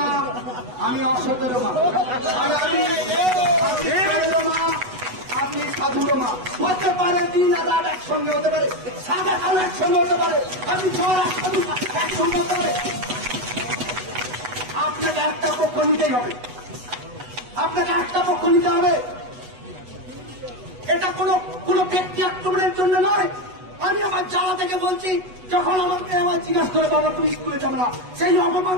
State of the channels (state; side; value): late; left; 8.1 ms